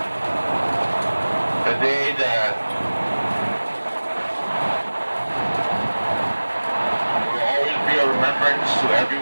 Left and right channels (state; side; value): inverted; both; correlation -1.00